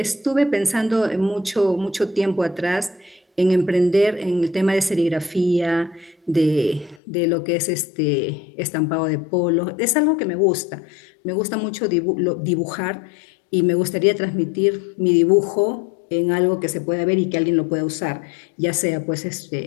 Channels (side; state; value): right; drops out; at 7.0 s